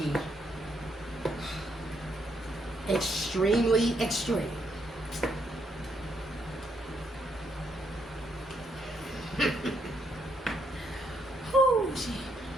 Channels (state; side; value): normal; both; correlation 0.75